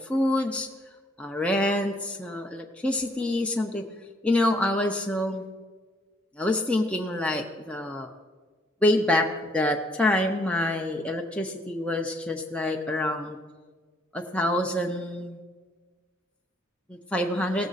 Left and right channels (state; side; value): normal; both; correlation 0.66